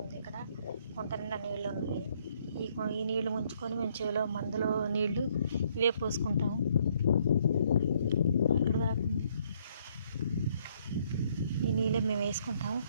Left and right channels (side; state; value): both; inverted; correlation -0.67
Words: ఉంది. ఇక్కడ గుంట నిండా నీళ్ళు ఉన్నాయి. ఈ నీళ్లు ముంచుకొని మేము చెవిలో మందులో నీళ్లు ఇవే పోసుకుంటాము. అక్కడ ఈ నీళ్ళే మేము వేసుకుంటాము.